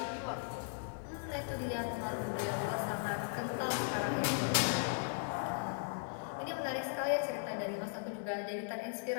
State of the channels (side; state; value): right; silent; digital silence